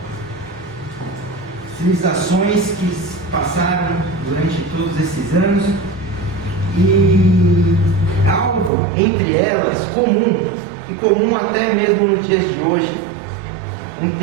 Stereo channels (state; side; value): drops out; left; at 8.7 s